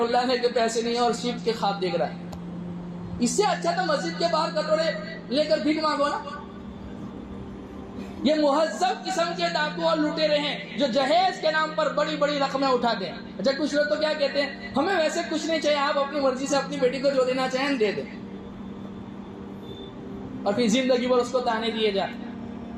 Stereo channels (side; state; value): both; identical; correlation 1.00